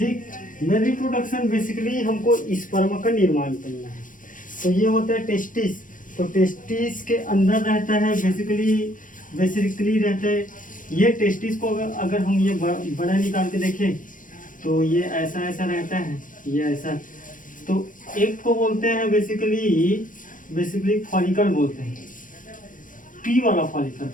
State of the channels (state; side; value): late; right; 0.38 ms